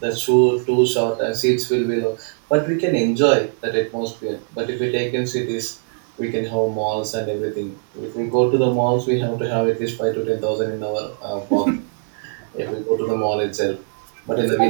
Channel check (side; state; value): left; silent; 65 dB below the other